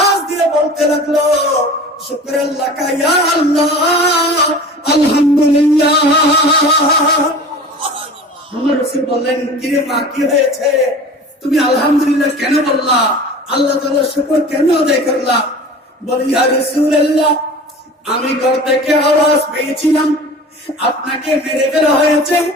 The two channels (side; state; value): both; normal; correlation 0.39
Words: দিয়ে বলতে লাগলো শুকরাল্লাহ ইয়া আল্লাহ, আলহামদুলিল্লাহ। আমার রাসূল বললেন কিরে মা, কি হয়েছে? তুমি আলহামদুলিল্লাহ কেন বললা? আল্লাহ তাআলার শুকর কেন আদায় করলা? বলি ইয়া রাসূলুল্লাহ, আমি ঘর থেকে আওয়াজ পেয়েছিলাম আপনাকে মেরে ফেলা হয়েছে,